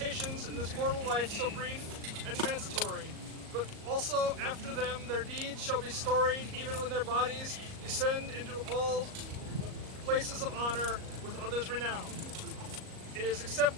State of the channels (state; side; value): late; left; 38 ms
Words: in this mortal life so brief and transitory, but also after them their deeds shall be storied, even when their bodies descend into all places of honor with others renowned. It is